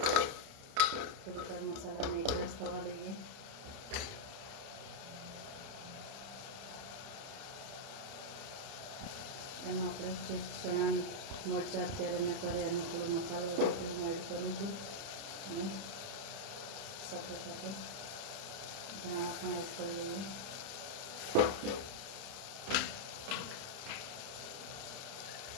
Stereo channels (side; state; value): left; late; 30 ms